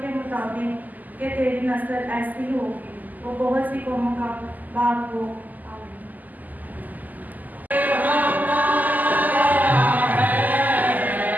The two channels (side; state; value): left; late; 0.082 ms